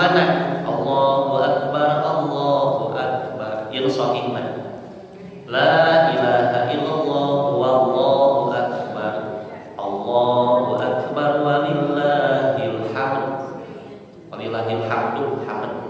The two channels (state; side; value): identical; both; correlation 1.00